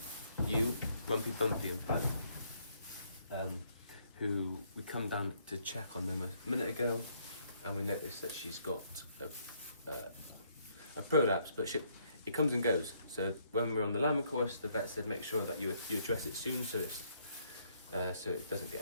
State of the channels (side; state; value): both; inverted; correlation -0.69